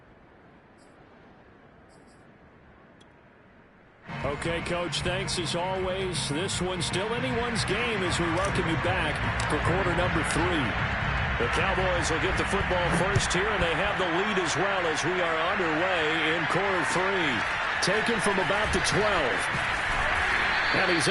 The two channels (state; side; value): identical; both; correlation 1.00